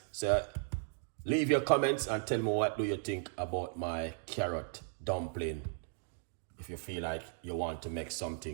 So leave your comments and tell me, what do you think about my carrot dumpling. If you feel like you want to make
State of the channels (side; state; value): left; silent; 54 dB below the other